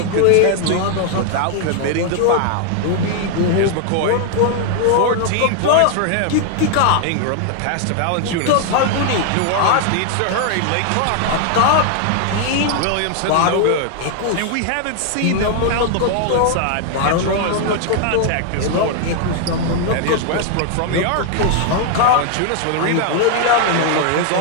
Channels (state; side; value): different; both; correlation 0.00